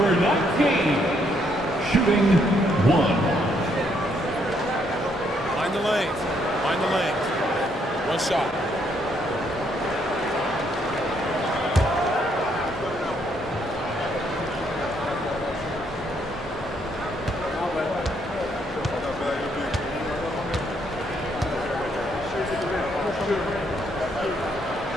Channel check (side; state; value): both; normal; correlation 0.72